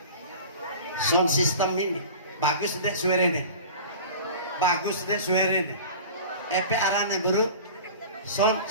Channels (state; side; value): inverted; both; correlation -0.38